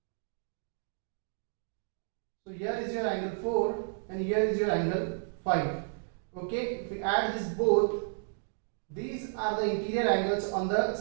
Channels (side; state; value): left; silent; digital silence